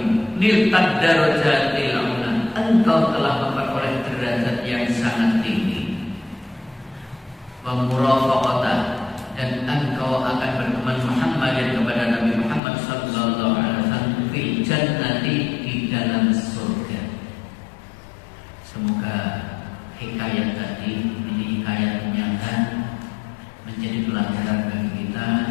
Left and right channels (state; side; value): drops out; right; at 12.6 s